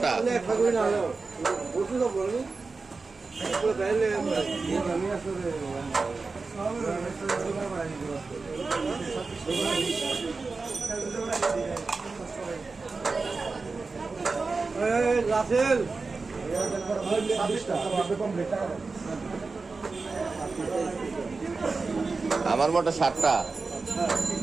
আমার মোটা 7টা।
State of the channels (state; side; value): quieter; left; 4.1 dB